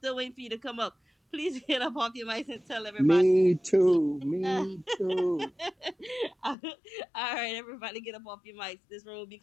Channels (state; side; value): drops out; right; at 6.6 s